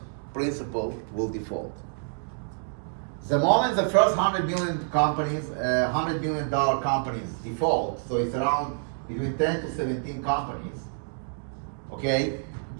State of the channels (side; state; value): left; silent; digital silence